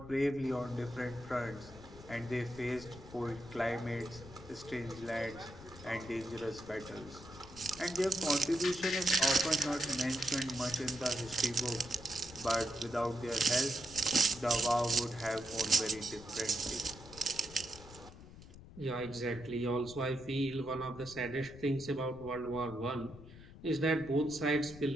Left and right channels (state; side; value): noise; left; rumble, 17 dB below the sound